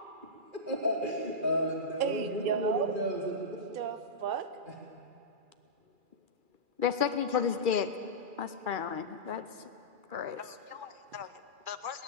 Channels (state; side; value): late; left; 2.4 ms